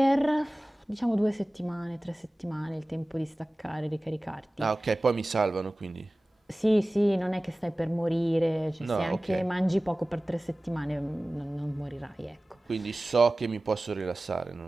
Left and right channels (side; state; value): both; normal; correlation 0.97